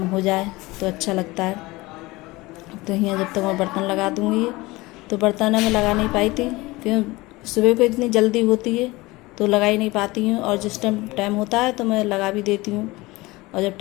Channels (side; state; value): right; quieter; 21.3 dB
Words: हो जाए तो अच्छा लगता है। तो यहाँ जब तक मैं बर्तन लगा दूँगी, तो बर्तन मैं लगा नहीं पाई थी क्यों, सुबह को इतनी जल्दी होती है तो लगा ही नहीं पाती हूँ, और जिस टाइम टाइम होता है तो मैं लगा भी देती हूँ, और जब